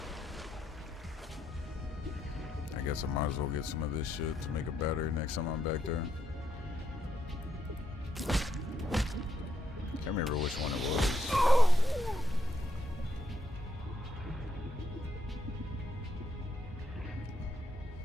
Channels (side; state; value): both; normal; correlation 0.78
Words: I guess I might as well get some of this shit to make a battery next time I'm back there. Can't remember which one it was.